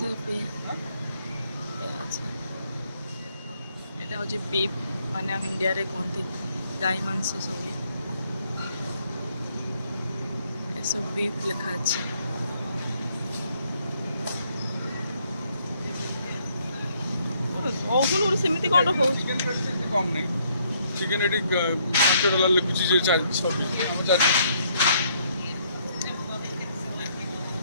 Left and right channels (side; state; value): both; inverted; correlation -0.69